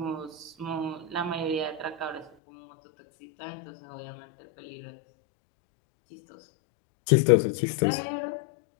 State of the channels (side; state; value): right; drops out; at 2.3 s